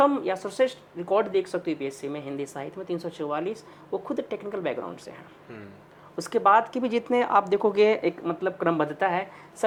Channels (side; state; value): both; identical; correlation 1.00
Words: या सर्वश्रेष्ठ रिकॉर्ड देख सकते हो यूपीएससी में हिंदी साहित्य में 344, वो खुद टेक्निकल बैकग्राउंड से हैं। उसके बाद की भी जितने आप देखोगे, एक मतलब क्रमबद्धता है,